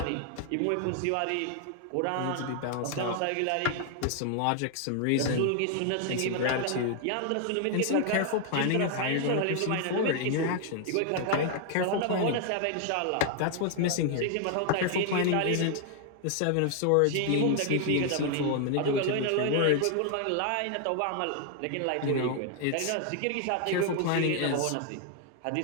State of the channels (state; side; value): different; both; correlation 0.00